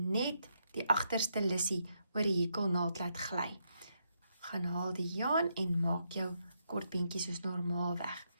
die agterste lussie oor die hekelnaald laat gly. Gaan haal die jaan en maak jou kortbeentjie soos normaalweg.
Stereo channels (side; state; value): both; inverted; correlation -0.79